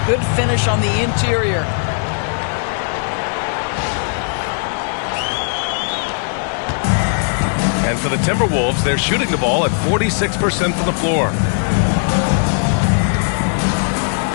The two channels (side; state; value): right; silent; 68 dB below the other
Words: Good finish on the interior. And for the Timberwolves, they're shooting the ball at 46% from the floor.